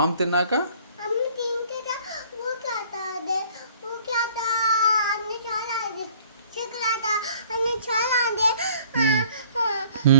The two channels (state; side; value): inverted; both; correlation -0.55